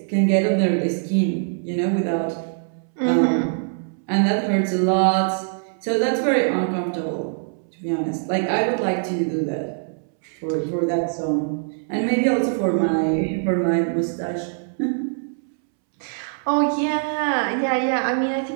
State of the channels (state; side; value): silent; left; 64 dB below the other